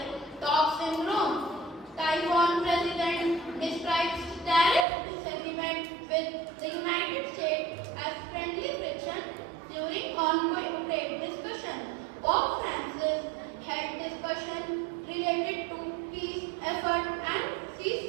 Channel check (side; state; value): left; drops out; at 4.9 s